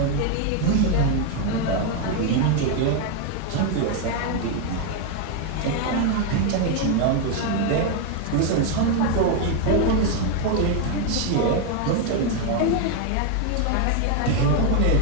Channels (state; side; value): different; both; correlation 0.01